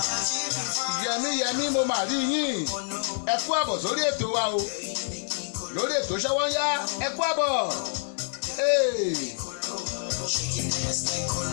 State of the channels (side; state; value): right; silent; digital silence